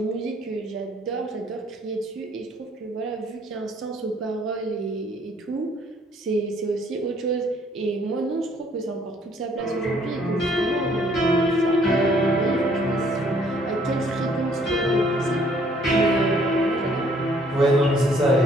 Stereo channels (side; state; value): both; normal; correlation 0.62